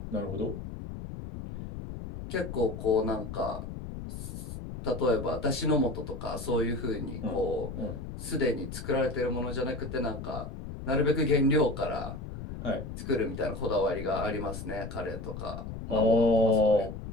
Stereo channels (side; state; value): left; noise; rumble, 9 dB below the sound